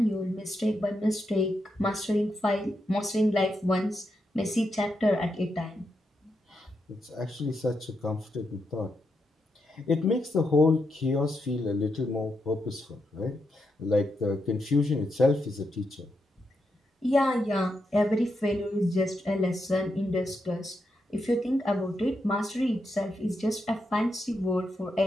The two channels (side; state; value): both; normal; correlation 0.83